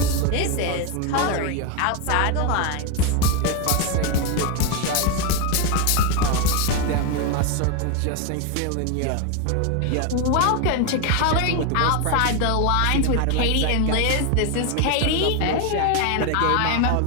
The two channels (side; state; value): both; different; correlation 0.02